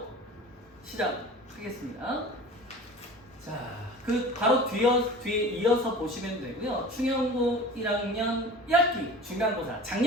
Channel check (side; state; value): both; normal; correlation 0.39